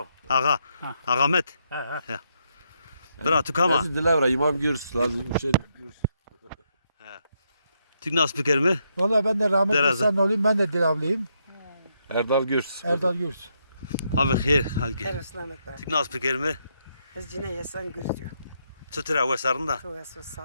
Ağa. Ağamet. Ha. Bira tukama. Lazım dilavra imam gürs. Lazım şey gürs. Tük nas piker mi? Valla ben de rahmetli Deraze. sen olayım, ben de Dilavlıyım. Erdal gürs. Erdal Gürs. Ma bixir halgi. Her ıslamet var. Tük nas piker mi? Ez cine yesan gürtüyor. Çıtıra vesarında. Tu esu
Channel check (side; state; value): both; inverted; correlation -0.78